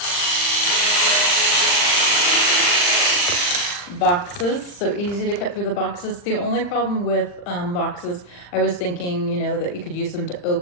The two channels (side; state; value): right; late; 40 ms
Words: Boxes, so easy to cut through the boxes. The only problem with boxes, I was thinking, you know, that you could use them to